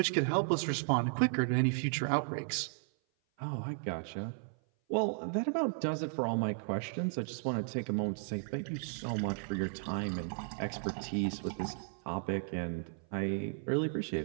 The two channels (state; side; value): silent; left; 55 dB below the other